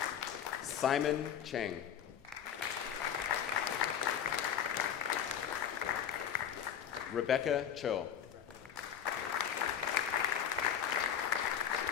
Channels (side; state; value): right; quieter; 8.7 dB